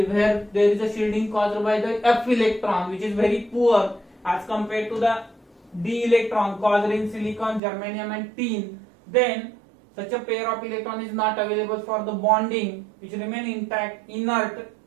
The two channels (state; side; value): drops out; left; at 7.6 s